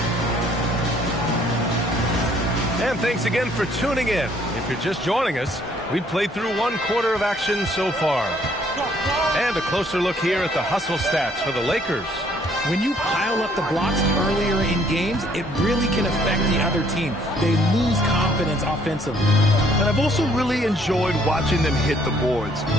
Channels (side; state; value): both; normal; correlation 0.63